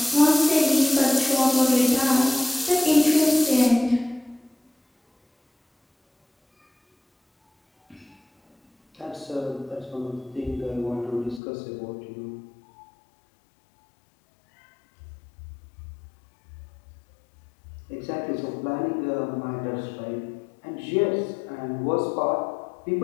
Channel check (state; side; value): drops out; right; at 11.4 s